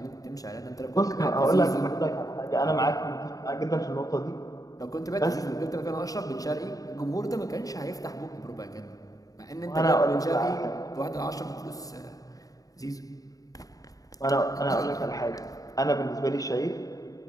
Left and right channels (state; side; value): late; right; 0.17 ms